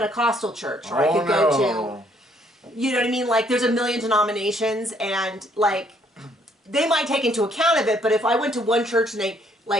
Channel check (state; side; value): normal; both; correlation 0.66